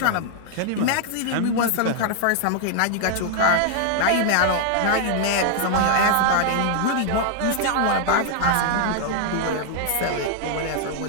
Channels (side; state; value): both; different; correlation 0.00